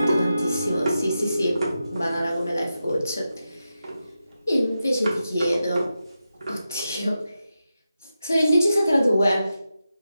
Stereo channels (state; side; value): inverted; both; correlation -0.90